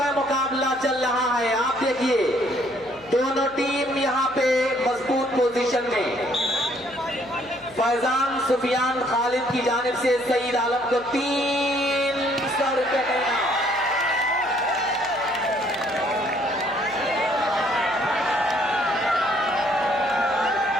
मुकाबला चल रहा है। आप देखिए दोनों टीम यहाँ पे मजबूत पोजीशन में। फैजान सुफियान खालिद की जानिब से सईद आलम को 300 रुपए का इनाम।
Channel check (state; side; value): noise; left; hum, 25 dB below the sound